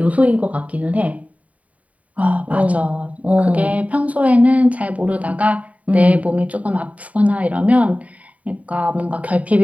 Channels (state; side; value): late; left; 0.069 ms